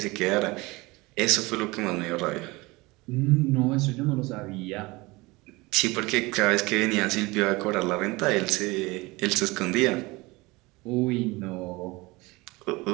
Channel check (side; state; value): left; quieter; 22.9 dB